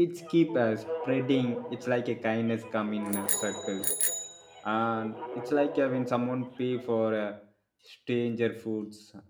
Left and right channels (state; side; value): identical; both; correlation 1.00